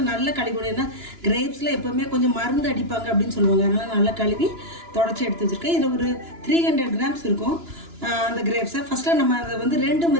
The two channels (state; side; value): late; left; 2.9 ms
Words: நல்லா கழுவி. ஏன்னா கிரேப்ஸில் எப்போவுமே கொஞ்சம் மருந்து அடிப்பாங்க அப்படின்னு சொல்லுவாங்க. அதனால் நல்லா கழுவி தொடச்சி எடுத்து வச்சுருக்கேன். இதில் ஒரு 300 கிராம்ஸ் இருக்கும் அந்த கிரேப்ஸை. ஃபஸ்ட்டாக நம்ம அதை வந்து 2